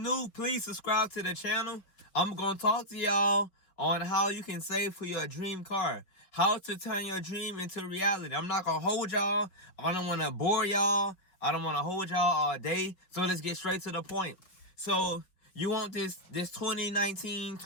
please subscribe to the channel. I'm gonna talk to y'all on how you can save for your dream car, how to turn your dream into reality. I'm not gonna hold y'all. I don't want to bore y'all. I don't want to hold y'all all day. So let's get straight to the point. So you want this 2019,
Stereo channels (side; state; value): right; late; 5.1 ms